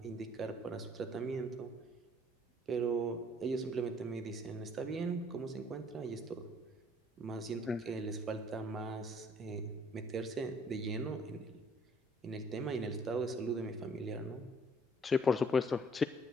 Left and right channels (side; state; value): both; normal; correlation 0.60